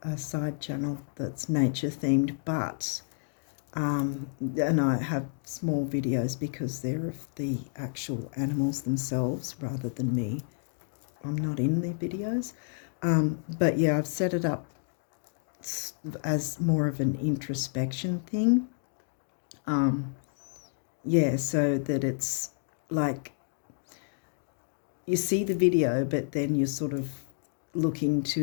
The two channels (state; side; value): silent; right; digital silence